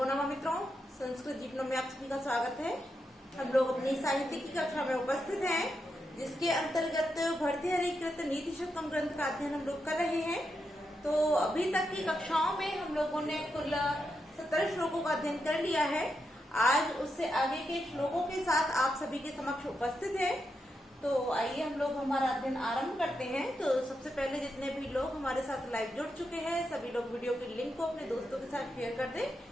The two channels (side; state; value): both; normal; correlation 0.85